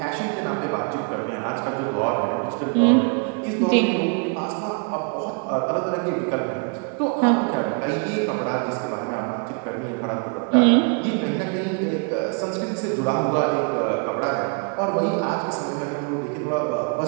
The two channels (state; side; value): quieter; left; 37.9 dB